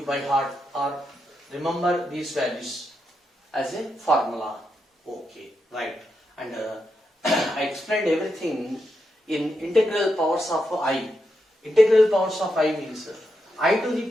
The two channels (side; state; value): both; normal; correlation 0.84